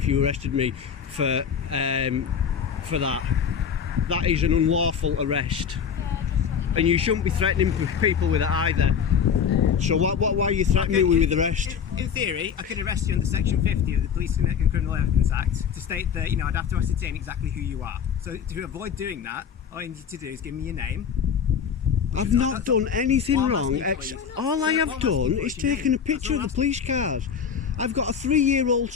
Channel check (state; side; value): quieter; right; 7.3 dB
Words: you arrested me for that. That is an unlawful arrest, and you shouldn't be threatening people with it either. So why are you threatening me with arrest? In theory, I could arrest you under Section 50 of the Police and Criminal Evidence Act to state that I'd have to ascertain exactly who you are. So to avoid doing that, all you need to do is give me your name. I've not done anything wrong. All I have done is taken taken a picture of the police cars. I've got a 3-year-old